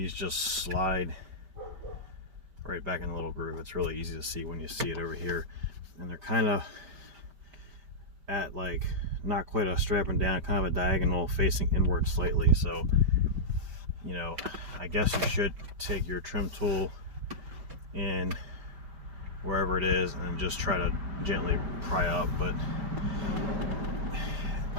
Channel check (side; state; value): left; late; 5.1 ms